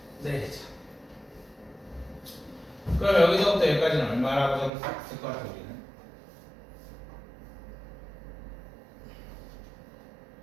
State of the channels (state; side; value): drops out; left; at 4.7 s